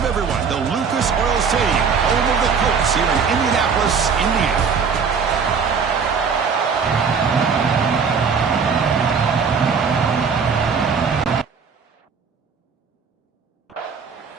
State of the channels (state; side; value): quieter; left; 5.9 dB